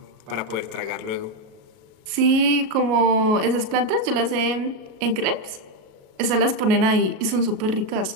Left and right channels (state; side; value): late; left; 37 ms